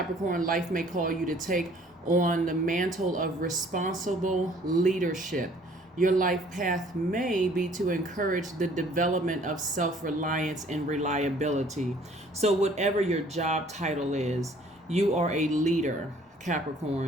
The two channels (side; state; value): both; normal; correlation 0.57